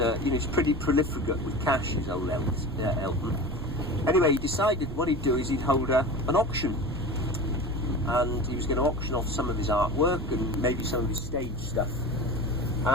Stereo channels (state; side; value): noise; right; rumble, 9 dB below the sound